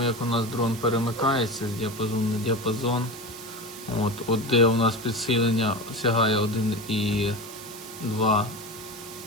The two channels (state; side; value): noise; right; hiss, 14 dB below the sound